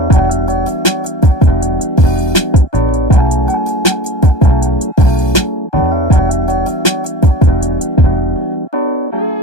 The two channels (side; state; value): right; late; 1.2 ms